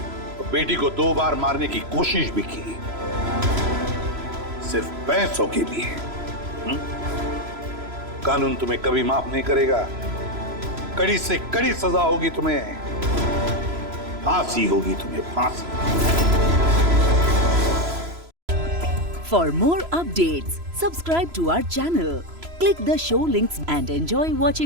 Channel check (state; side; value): late; left; 3.0 ms